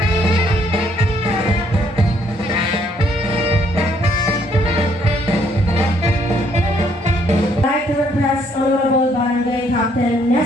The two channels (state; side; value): normal; both; correlation 0.68